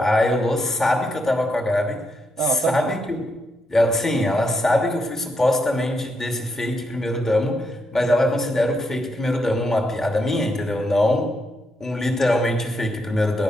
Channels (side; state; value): both; normal; correlation 0.80